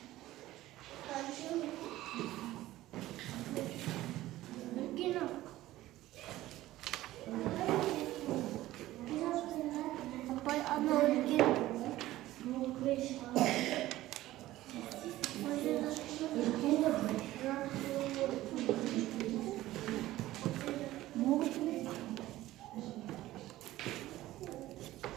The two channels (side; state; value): left; quieter; 15.9 dB